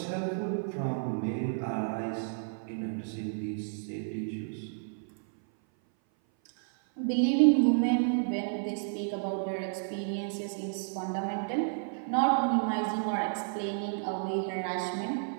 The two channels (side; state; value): left; silent; 57 dB below the other